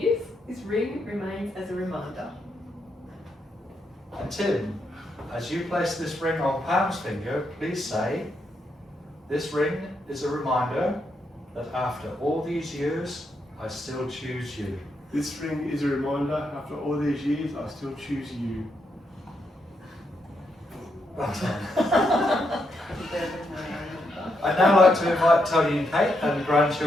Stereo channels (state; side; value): normal; both; correlation 0.80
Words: this ring remains as a reminder. And Tim, as you place this ring on Pam's finger, please say, "This ring is a reminder that after all these years, I still choose you." This ring is a reminder, after all these years, I still choose you. Well done. I'd now like to invite Tony and Kate and the